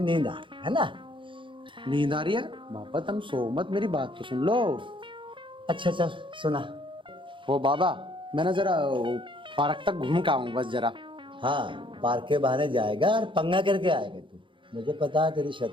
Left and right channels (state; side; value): late; left; 0.24 ms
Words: आ रही है ना। नींद आ रही है? बाबा तुम सो मत, मेरी बात तो सुन लो। अच्छा चल सुना। वो बाबा मैं ना जरा पार्क तक घूम के आऊँ बस जरा। हाँ, पार्क के बहाने जाएगा और पंगा करके आएगा तू, मुझे पता है तेरी